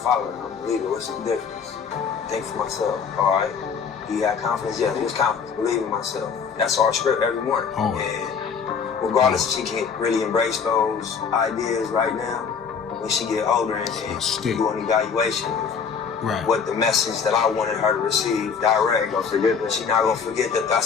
I'm a leader. What's the difference? Think for myself. All right. You got confidence? Yeah, there's confidence. Believe in myself. That's our script every morning. Oh. And regardless if she can really embrace those ideas right now, when she get older and do an evaluation of what the message that I wanted her to receive direct, she's not gonna forget that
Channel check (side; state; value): right; quieter; 6.2 dB